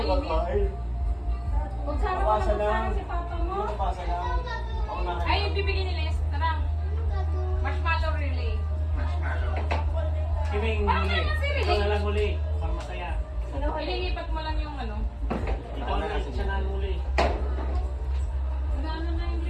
ko kakainin. Kung sana mo Pasa lang. sana si papa mo. Hindi ko pasa lang. Ako na. Ay, yung bibigyan ni Les. Tara. Marshmallow relay. Kiming Parang huli. naman si Riley. Ikaw na lang huli. Para masaya. Ililipat mo lang yung ano. Ikaw na lang siya na huli. Gano'n na yung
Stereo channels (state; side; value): identical; both; correlation 1.00